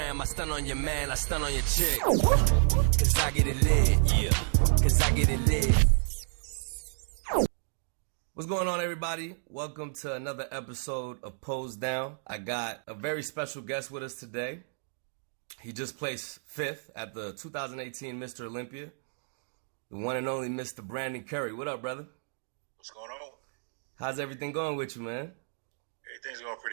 I stun on your man, I stun on your chick. Cause I get it lit, yeah. Cause I get it lit. What's going on, everybody? Welcome to another episode of Pose Down. I got a very special guest with us today. He just placed 5th at the 2018 Mr. Olympia. The one and only Mr. Brandon Curry. What up, brother? What's going on? How's everything going with you, man? Everything's going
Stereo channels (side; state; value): left; silent; digital silence